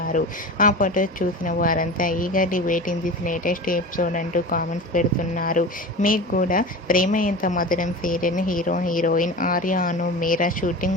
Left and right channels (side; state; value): both; normal; correlation 0.31